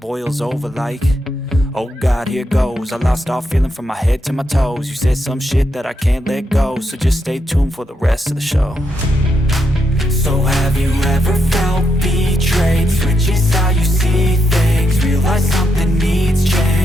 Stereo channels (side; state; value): both; normal; correlation 0.81